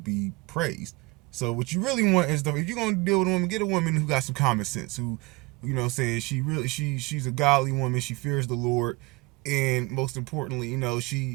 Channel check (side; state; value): left; quieter; 25.2 dB